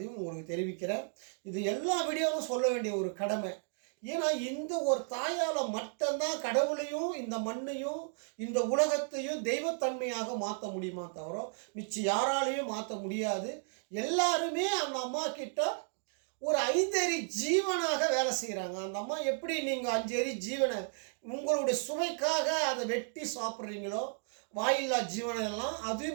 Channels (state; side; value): silent; left; 55 dB below the other